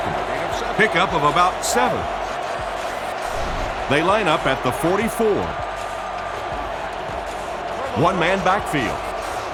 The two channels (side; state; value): both; identical; correlation 1.00